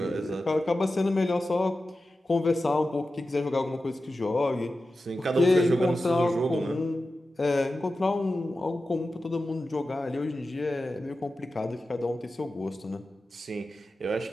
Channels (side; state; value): both; normal; correlation 0.93